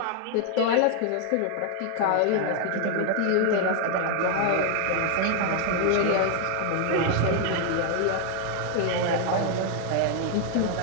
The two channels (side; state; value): both; different; correlation 0.00